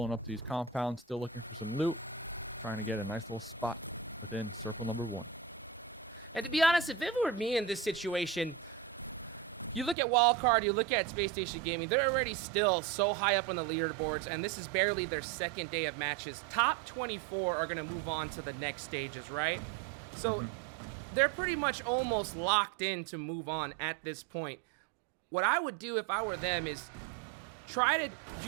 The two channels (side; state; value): left; drops out; at 10.0 s